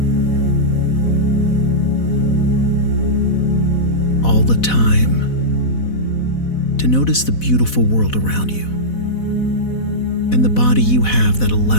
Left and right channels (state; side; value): late; right; 4.1 ms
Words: All the time to notice the beautiful world around you and the body you have that